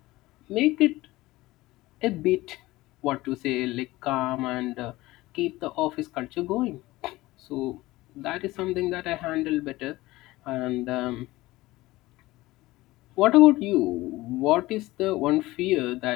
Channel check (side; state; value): right; quieter; 18.8 dB